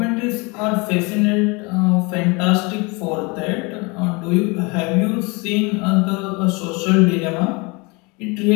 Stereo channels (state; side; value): quieter; right; 27.9 dB